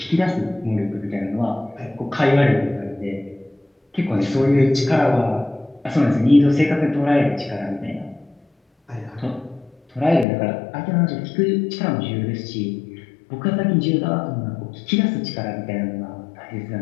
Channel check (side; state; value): right; drops out; at 10.2 s